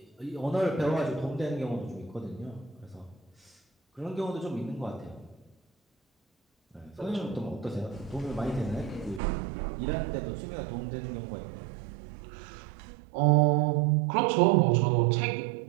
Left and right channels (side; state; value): left; drops out; at 9.2 s